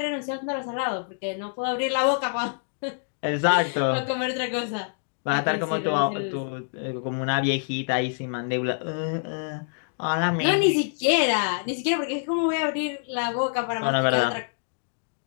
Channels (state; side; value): silent; right; digital silence